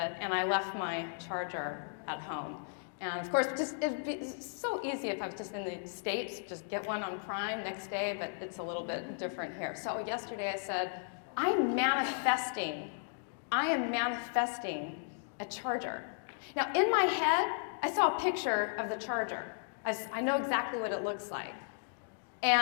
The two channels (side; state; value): right; silent; digital silence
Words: and I left my charger at home. And of course, it'd be so easy if I was just in the States, just get one on Prime next day, but it's a little bit different here. So yesterday I said, I am manifesting a charger. Now in my head, I saw a picture of the charger. I know exactly what it looks like.